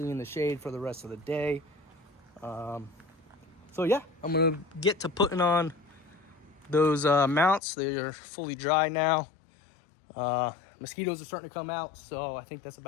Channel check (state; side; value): drops out; right; at 7.6 s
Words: in the shade for the rest of the day. So yeah, I'm gonna get to putting on those mounts. They are fully dry now. Mosquitoes are starting to come out, so I think that's